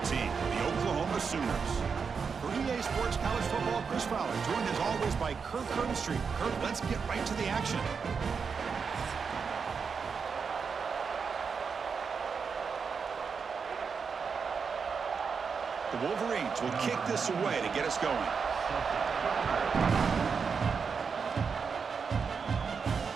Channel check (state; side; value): quieter; left; 5.7 dB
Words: team, the Oklahoma Sooners. For EA Sports College Football, Chris Fowler, joined as always by Kirk Street. Kirk, let's get right to the action. The Wolverines will kick this away to get us going.